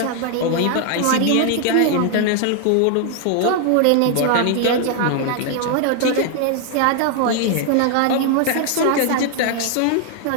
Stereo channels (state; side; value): different; both; correlation 0.00